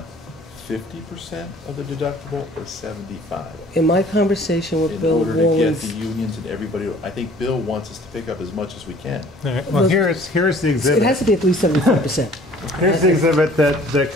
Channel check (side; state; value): both; normal; correlation 0.53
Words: 50% of the deductible or 75? in my conversation with In Bill order to get the Wallens, unions and everybody, I think Bill wants us to pick up as much as we can. All right, well, here's the it exhibit. has to be at least 75%. Here's the exhibit that